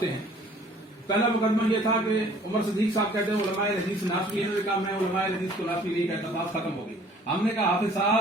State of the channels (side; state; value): both; normal; correlation 0.55